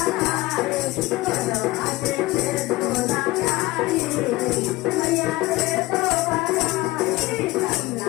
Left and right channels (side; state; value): right; quieter; 19.9 dB